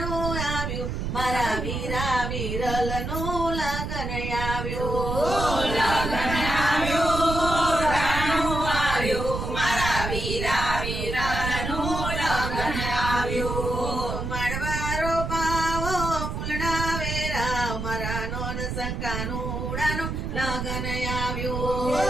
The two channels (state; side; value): noise; right; rumble, 4 dB below the sound